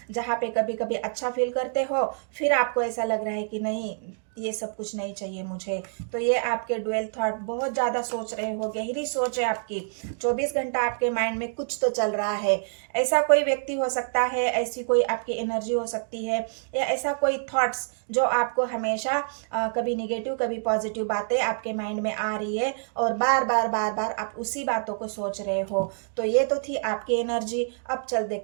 जहाँ पे कभी कभी अच्छा फील करते हो, फिर आपको ऐसा लग रहा है कि नहीं ये सब कुछ नहीं चाहिए मुझे। तो ये आपके डुअल थॉट, बहुत ज़्यादा सोच रहे हो, गहरी सोच है आपकी, 24 घंटा आपके माइंड में कुछ तो चल रहा है। ऐसा कोई व्यक्ति हो सकता है, ऐसी कोई आपकी एनर्जी हो सकती है, या ऐसा कोई थॉट्स जो आपको हमेशा कभी निगेटिव कभी पॉजिटिव बातें आपके माइंड में आ रही है, और बार बार बार बार आप उसी बातों को सोच रहे हो। तो ये तो थी आपकी एनर्जी। अब चल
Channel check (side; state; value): left; silent; digital silence